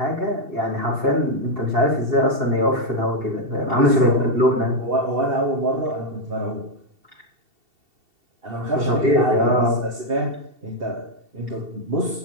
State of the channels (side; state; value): left; late; 2.7 ms